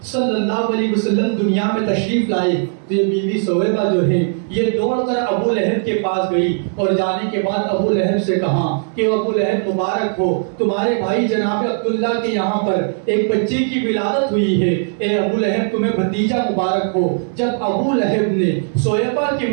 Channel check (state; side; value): silent; left; 67 dB below the other